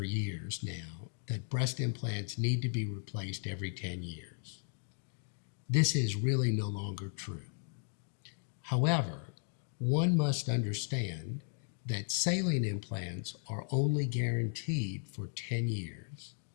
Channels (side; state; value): right; silent; 54 dB below the other